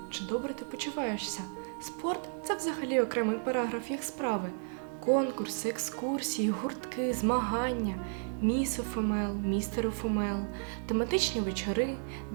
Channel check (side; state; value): left; silent; 56 dB below the other